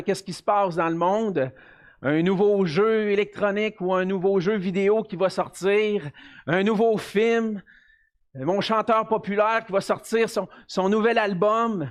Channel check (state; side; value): identical; both; correlation 1.00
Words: ce qui se passe dans le monde. Un nouveau jeu électronique ou un nouveau jeu vidéo qui va sortir, un nouveau film, mon chanteur populaire qui va sortir son nouvel